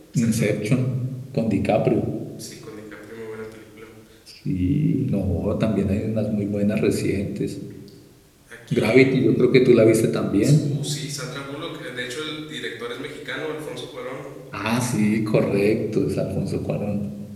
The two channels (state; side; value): identical; both; correlation 1.00